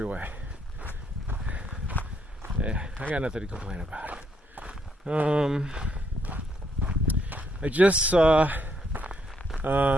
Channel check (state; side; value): normal; both; correlation 0.73